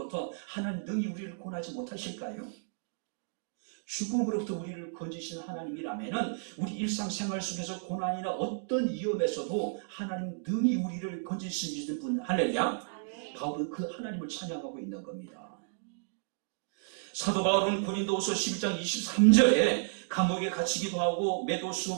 하나님 능히 우리를 구원하지 못하실까요? 죽음으로부터 우리를 건지신 하나님이라면 우리 일상생활 속에서 고난이나 어떤 위험에서도 하나님 능히 우리를 건지시는 분, 할렐루야. 바울은 그 하나님을 찬양하고 있는 겁니다. 사도 바울은 고린도후서 11장 23절에 감옥에 갇히기도 하고 매도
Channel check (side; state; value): left; silent; digital silence